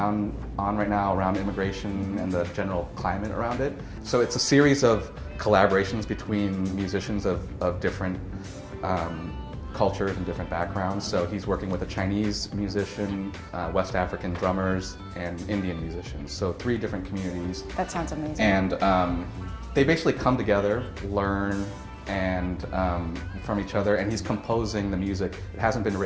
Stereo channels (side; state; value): both; identical; correlation 1.00